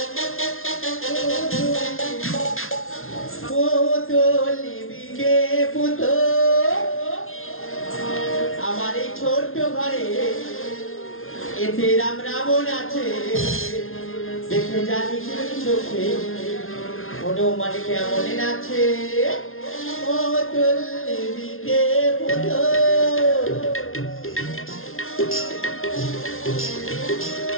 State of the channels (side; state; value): right; late; 0.60 ms